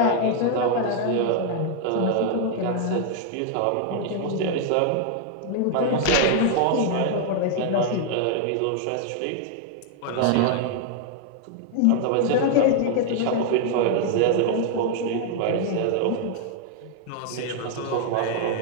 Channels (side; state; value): both; different; correlation 0.00